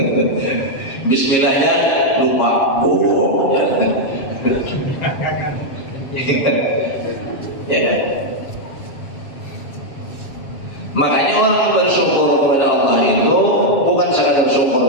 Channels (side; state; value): right; late; 7.3 ms